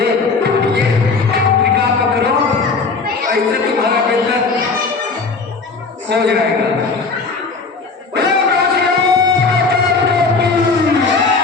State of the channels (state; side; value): quieter; right; 4.3 dB